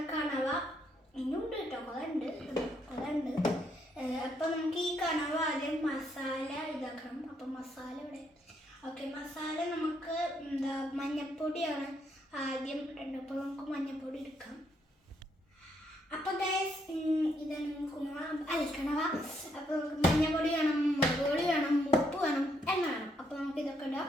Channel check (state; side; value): normal; both; correlation 0.74